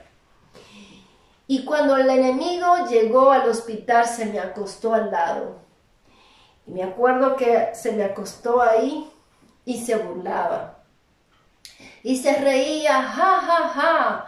Y cuando el enemigo llegó al hospital, se me acostó al lado. Y me acuerdo que se me acostó ahí y se burlaba. Y se reía, ja, ja, ja,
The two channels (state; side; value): identical; both; correlation 1.00